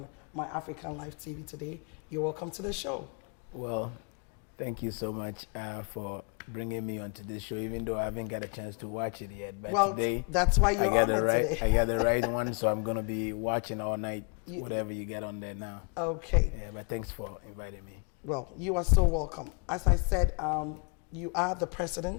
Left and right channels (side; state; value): right; quieter; 36.4 dB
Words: My African Life TV today. You're welcome to the show. Well, thank you so much for bringing me onto this show, even though I haven't got a chance to watch it yet. But well, today, that's why you're on it today. I got the right one, so I'm going to be watching all night, whatever you get on there now. Okay. Yeah, but thanks for inviting me. Well, you are so welcome. As I said, you are the